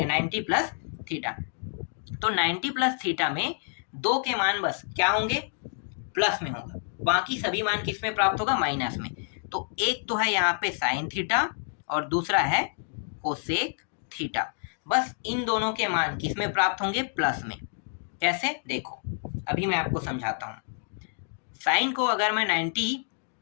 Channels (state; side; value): silent; right; 59 dB below the other